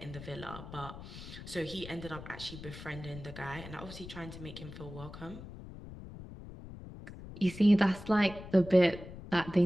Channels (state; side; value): noise; left; rumble, 13 dB below the sound